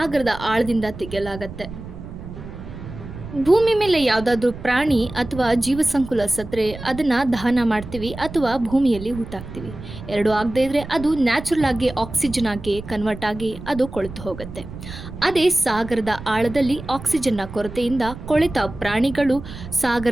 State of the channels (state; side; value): noise; right; rumble, 12 dB below the sound